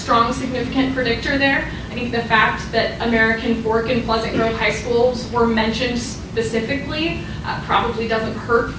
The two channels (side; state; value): both; identical; correlation 1.00